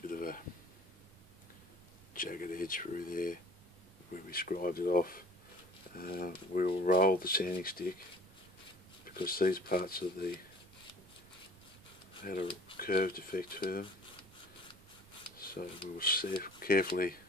of a jagged edge through there where we scribed it off. We'll roll the sanding stick because these parts of the had a curved effect to them, so we'll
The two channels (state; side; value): noise; right; rumble, 24 dB below the sound